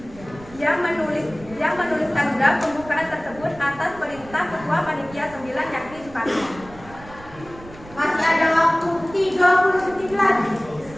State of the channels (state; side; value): noise; right; rumble, 19 dB below the sound